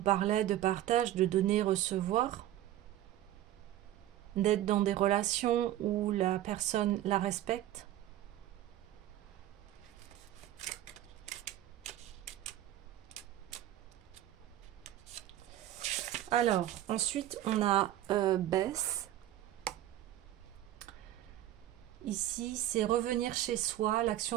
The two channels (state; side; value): quieter; left; 13.2 dB